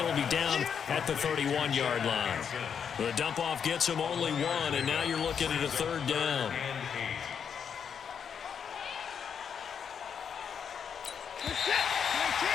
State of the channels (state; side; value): quieter; right; 7.3 dB